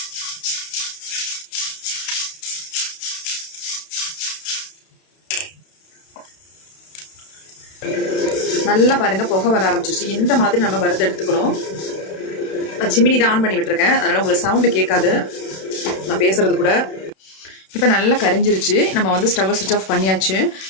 நல்லா பாருங்கள், புகை வர ஆரம்பிச்சிருச்சு. இந்த மாதிரி நம்ம வறுத்து எடுத்துக்கணும். நான் சிமினி தான் ஆன் பண்ணி விட்டுருக்கேன், அதனால் உங்களுக்கு சவுண்டு கேட்காது நான் பேசுகிறது கூட. இப்போ நல்லா கரிஞ்சிருச்சு. நம்ம வந்து ஸ்டவ்வை சுவிட்ச் ஆஃப் பண்ணியாச்சு.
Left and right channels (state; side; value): late; right; 32 ms